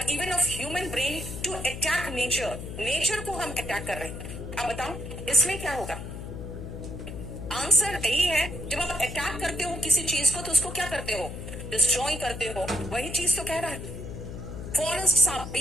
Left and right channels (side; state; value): left; noise; hum, 8 dB below the sound